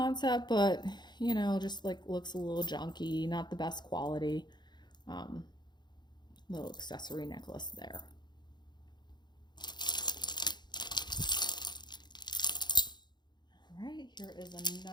but you know, just like looks a little junky, not the best quality. Little accessory necklace there. All right, here is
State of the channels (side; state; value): right; late; 0.21 ms